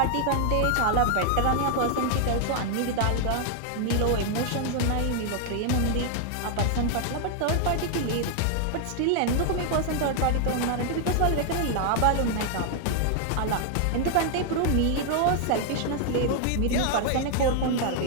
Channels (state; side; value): different; both; correlation 0.00